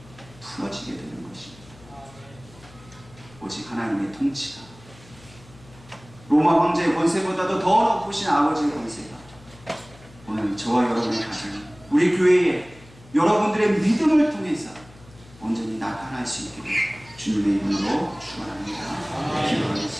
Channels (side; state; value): left; noise; hum, 23 dB below the sound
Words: 풀어지게 되는 것입니다. 오직 하나님의 통치가 로마 황제의 권세보다도 더 높으신 아버지의 권세가 오늘 저와 여러분의 가정, 우리 교회에 여러분들의 믿음을 통해서 온전히 나타날 수 있게 주님의 이름으로 축원합니다.